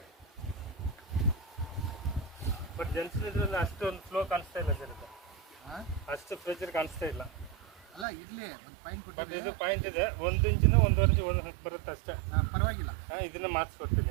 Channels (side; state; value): left; drops out; at 8.1 s